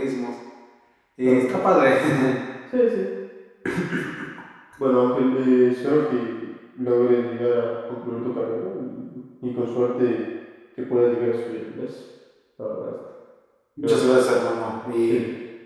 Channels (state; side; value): identical; both; correlation 1.00